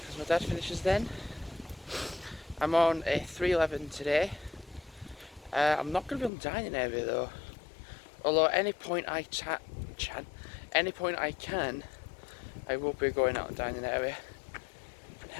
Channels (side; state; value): right; drops out; at 6.3 s